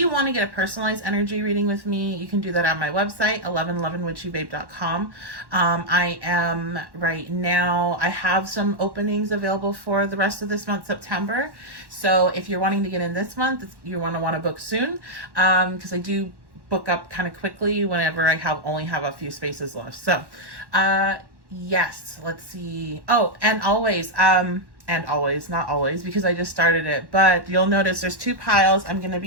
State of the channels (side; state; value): left; late; 1.1 ms